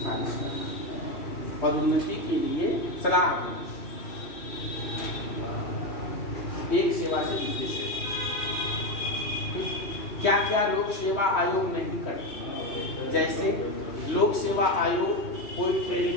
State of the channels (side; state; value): right; late; 3.1 ms